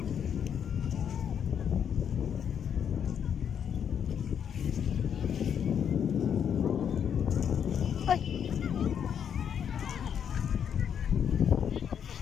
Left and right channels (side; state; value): right; quieter; 8.2 dB